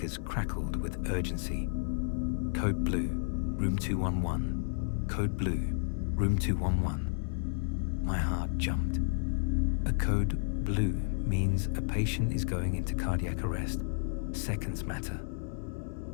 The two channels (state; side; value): silent; right; 56 dB below the other